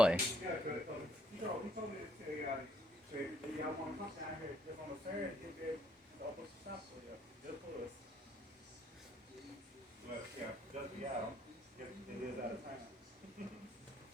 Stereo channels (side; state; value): both; normal; correlation 0.68